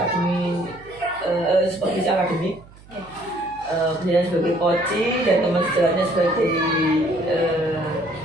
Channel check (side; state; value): right; noise; hum, 23 dB below the sound